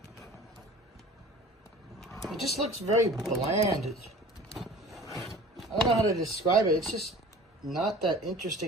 It just looks very bland. I don't know how to describe it. It's just not that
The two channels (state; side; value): normal; both; correlation 0.43